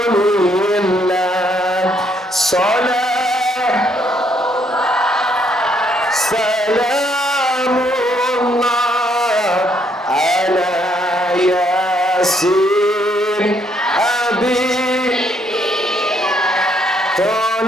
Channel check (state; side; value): normal; both; correlation 0.70